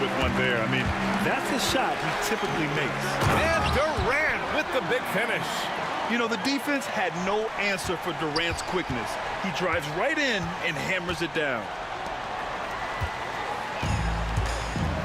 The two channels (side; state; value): both; identical; correlation 1.00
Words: one there. I mean, that's a shot he typically makes. And Durant with the big finish. You know, the defense had no answer for Durant's quickness. He drives right in and hammers it down.